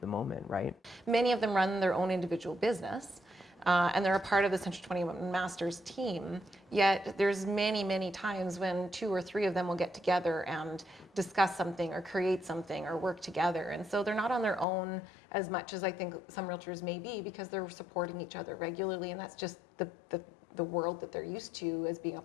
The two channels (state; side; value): drops out; right; at 14.7 s